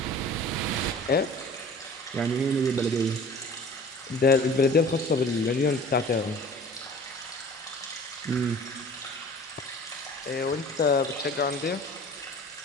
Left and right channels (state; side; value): normal; both; correlation 0.45